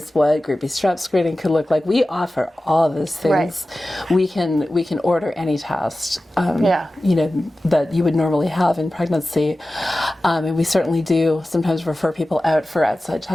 what group B strep screening could look like. We offer all of those things. Right. We can order any test. That you would normally have in pregnancy, and we certainly do sometimes refer people out for outside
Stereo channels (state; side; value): normal; both; correlation 0.95